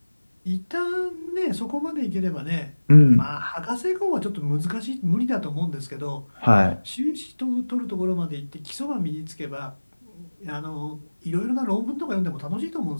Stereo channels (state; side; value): inverted; both; correlation -1.00